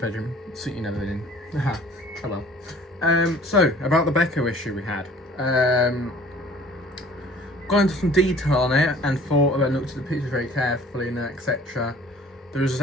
so you never in. Aha. Oh well. So about the Beko issue we had. Got into some detail on it and thought about looked at the pictures very carefully and etc. There was a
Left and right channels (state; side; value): normal; both; correlation 0.51